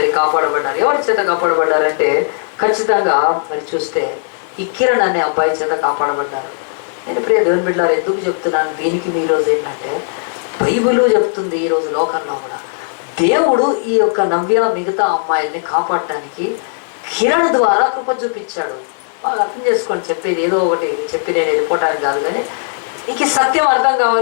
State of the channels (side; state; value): right; silent; digital silence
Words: కాపాడబడ్డారు. ఎవరి చేత కాపాడబడ్డారంటే ఖచ్చితంగా మరి చూస్తే ఈ కిరణ్ అనే అబ్బాయి చేత కాపాడబడ్డారు. నేను ప్రియ దేవుని బిడ్డలారా ఎందుకు చెప్తున్నాను దీనికి, ఈరోజు ఏంటంటే బైబిల్ చెప్తుంది ఈరోజు లోకంలో కూడా దేవుడు ఈ యొక్క నవ్య మిగతా అమ్మాయిల్ని కాపాడటానికి కిరణ్ ద్వారా కృప చూపించాడు. బాగా అర్థం చేసుకోండి, చెప్పేది ఏదో ఒకటి చెప్పి నేను వెళ్ళిపోవటానికి కాదు, కానీ ఇంక సత్యం అర్థం